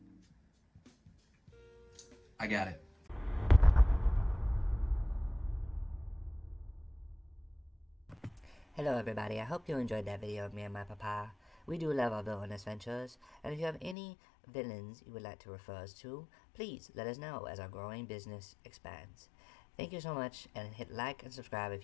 I got it. Hello everybody, I hope you enjoyed that video of me and my papa. We do love our villainous ventures, and if you have any villains you would like to refer us to, please let us know as our growing business expands. Thank you so much, and hit like and subscribe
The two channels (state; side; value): drops out; right; at 14.0 s